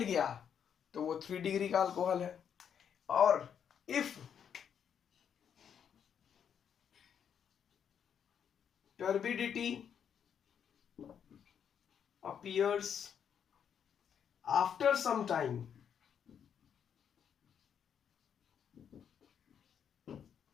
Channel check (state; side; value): quieter; right; 8.1 dB